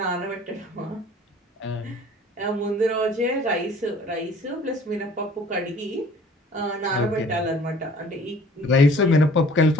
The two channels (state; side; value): normal; both; correlation 0.51